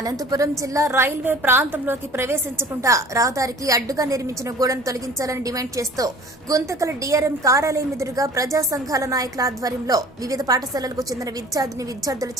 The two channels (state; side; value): normal; both; correlation 0.46